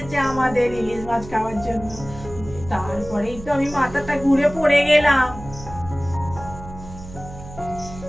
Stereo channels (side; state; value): right; noise; hum, 15 dB below the sound